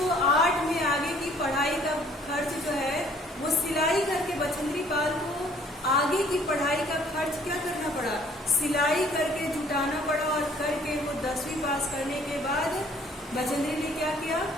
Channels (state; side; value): normal; both; correlation 0.58